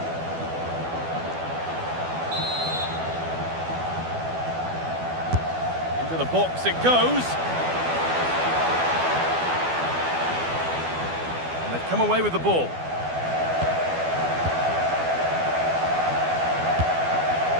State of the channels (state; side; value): late; left; 12 ms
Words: Into the box it goes. And they've come away with the ball.